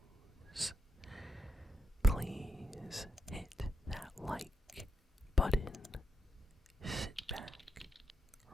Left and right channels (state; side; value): normal; both; correlation 0.82